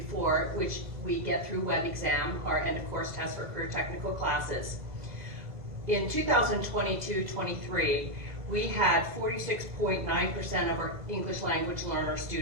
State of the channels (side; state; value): left; late; 2.0 ms